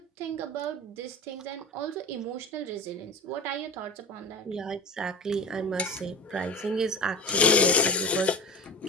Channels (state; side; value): normal; both; correlation 0.32